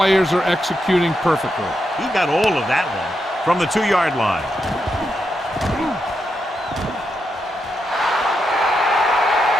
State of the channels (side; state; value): both; normal; correlation 0.84